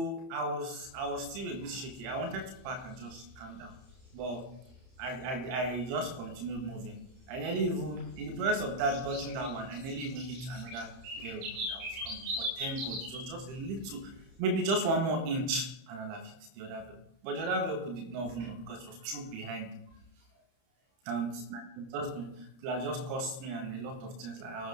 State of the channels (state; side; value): late; left; 30 ms